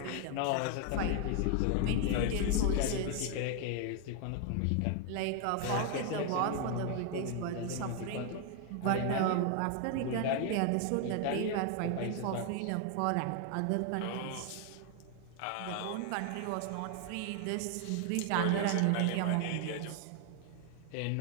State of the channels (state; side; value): different; both; correlation 0.00